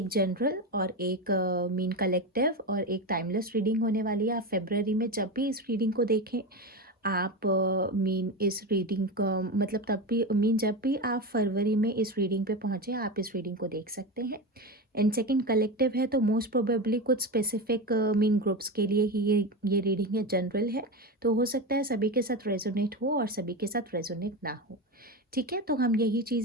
जनरल और एक मीन कलेक्टिव और एक टाइमलेस रीडिंग होने वाली है। आप फेबररी में जब भी इस रीडिंग को देखें, आप मीन इस रीडिंग का मतलब तब भी मीन जब भी आप फरवरी में इस रीडिंग पे पहुँचे आप इस रीडिंग को देख सकते हैं। एंड सेकंड कलेक्टिव है, तो मोस्ट प्रोबेबली कुछ स्पेसिफिक मीन ग्रुप्स के लिए ही ये रीडिंग है, जनरल है। तो हो सकता है सभी के साथ रेजोनेट हो और सभी के साथ रेजोनेट ना हो। ठीक है, तो हम यही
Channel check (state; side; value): normal; both; correlation 0.19